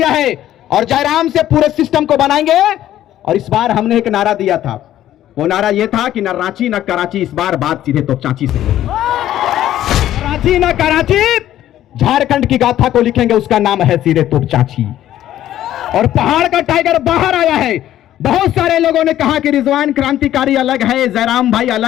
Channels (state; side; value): quieter; right; 12.6 dB